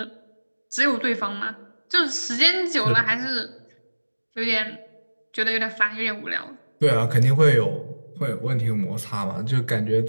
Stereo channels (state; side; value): inverted; both; correlation -1.00